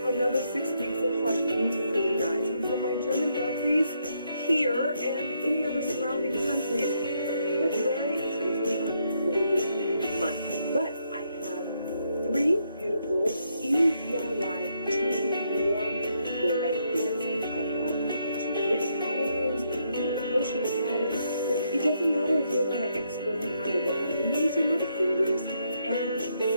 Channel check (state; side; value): inverted; both; correlation -0.76